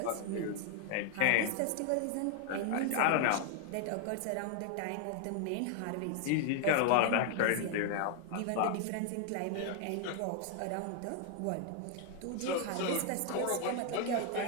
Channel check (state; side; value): different; both; correlation 0.00